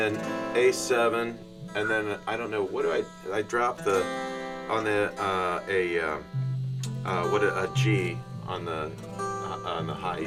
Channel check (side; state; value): both; identical; correlation 1.00